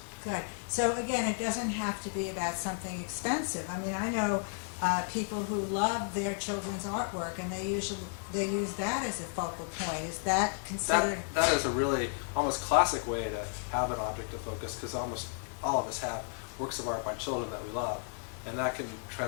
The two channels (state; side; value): silent; right; 56 dB below the other